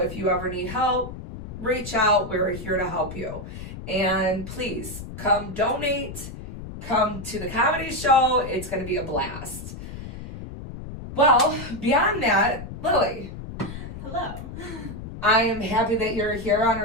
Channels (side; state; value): left; noise; rumble, 10 dB below the sound